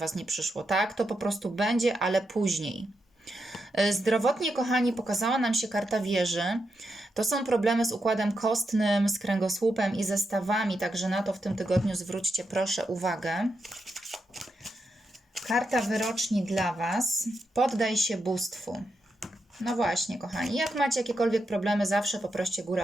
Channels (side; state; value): both; normal; correlation 0.84